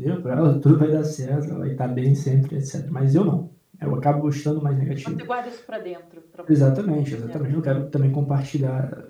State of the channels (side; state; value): both; identical; correlation 1.00